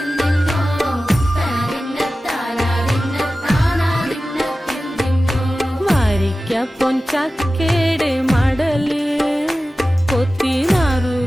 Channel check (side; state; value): both; normal; correlation 0.95